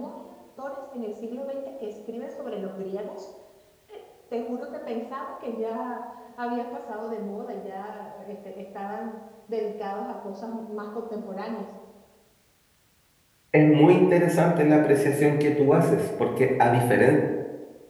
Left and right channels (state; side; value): identical; both; correlation 1.00